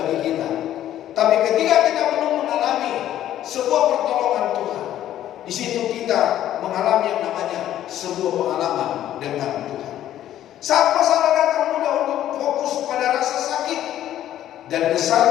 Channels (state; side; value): quieter; right; 12.1 dB